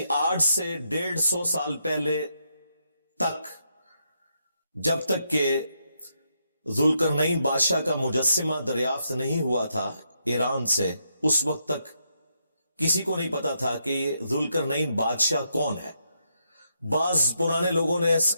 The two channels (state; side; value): inverted; both; correlation -0.80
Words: آج سے 150 سال پہلے تک جب تک کہ ذوالقرنین بادشاہ کا مجسمہ دریافت نہیں ہوا تھا ایران سے، اس وقت تک کسی کو نہیں پتا تھا کہ یہ ذوالقرنین بادشاہ کون ہے. بعض پرانے لوگوں نے